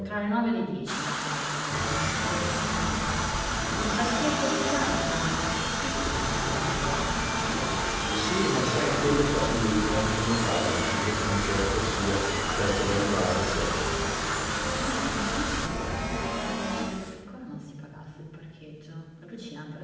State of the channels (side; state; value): both; identical; correlation 1.00